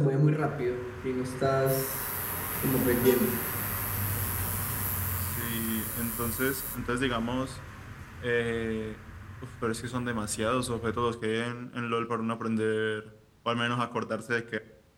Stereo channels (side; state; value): both; identical; correlation 1.00